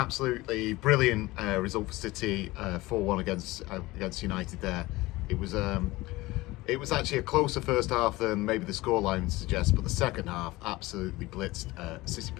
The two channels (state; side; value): quieter; right; 19.9 dB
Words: brilliant result for City, 4-1 against United there. It was actually a closer first half than maybe the scoreline suggests, but the second half absolutely blitzed, City